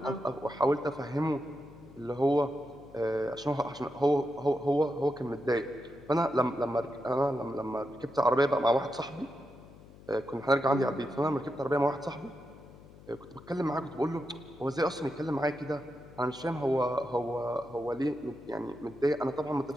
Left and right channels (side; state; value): left; noise; hum, 21 dB below the sound